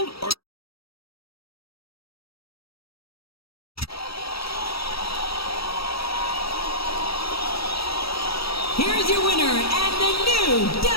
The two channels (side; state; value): right; late; 0.76 ms